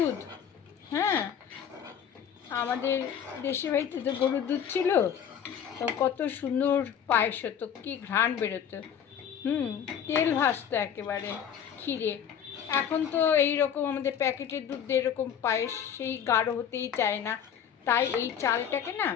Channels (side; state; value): right; quieter; 8.5 dB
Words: হ্যাঁ, আমাদের দেশে বাড়িতে তো গরুর দুধ ছিল, তো কত সুন্দর পায়েস হতো, কী ঘ্রাণ বেরোতো। তেল ভাসতো একেবারে ক্ষীরে। এখন তো এই রকম আমাদের প্যাকেটের দুধ দিয়ে এরকম পায়েস সেই গাঢ় হতেই চায় না। তাই এই চালটাকে না,